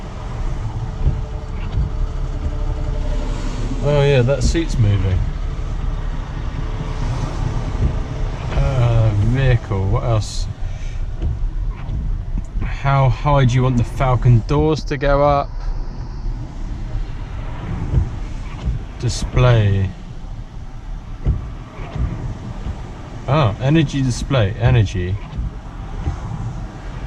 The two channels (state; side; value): identical; both; correlation 1.00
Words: Oh yeah, that seat's moving. Vehicle, what else? How high do you want the Falcon doors to go up? Display. Oh, energy display, energy.